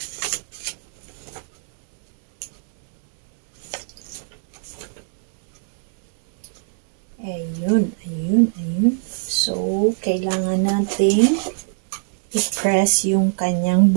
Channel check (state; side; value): silent; left; 65 dB below the other